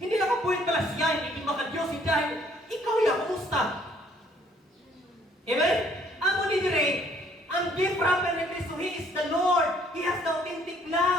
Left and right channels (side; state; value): both; normal; correlation 0.63